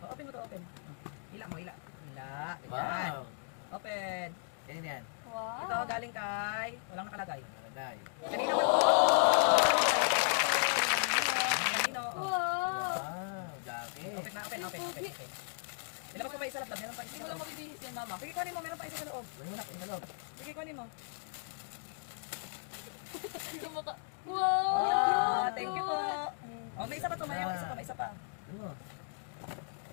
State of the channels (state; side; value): silent; right; digital silence